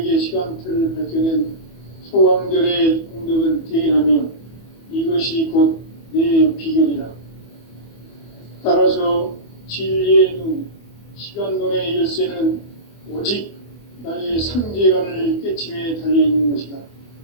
시간틀을 밝혀낸 소강절의 공덕은 대견하며 이것이 곧 내 비결이라. 따라서 진리의 눈, 시간론의 열쇠는 오직 나의 삼재간을 깨침에 달려있는 것이다.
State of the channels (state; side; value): late; right; 24 ms